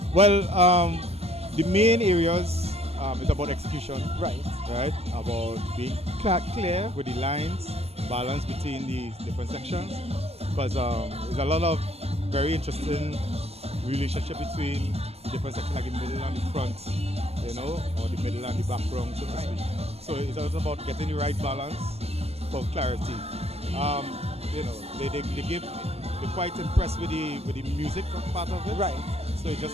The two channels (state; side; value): late; left; 0.30 ms